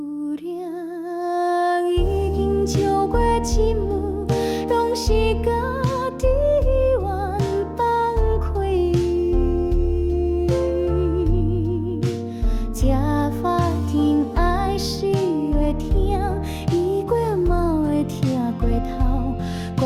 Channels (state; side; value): identical; both; correlation 1.00